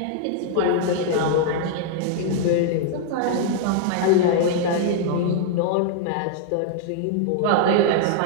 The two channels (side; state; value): both; different; correlation -0.01